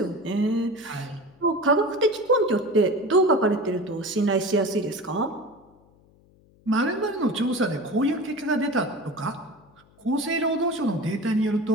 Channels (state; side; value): noise; left; hum, 30 dB below the sound